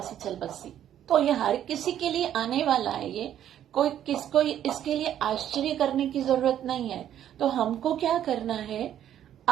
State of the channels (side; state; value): left; quieter; 10.8 dB